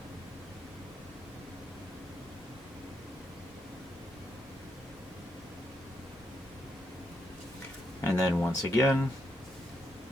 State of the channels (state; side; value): normal; both; correlation 0.80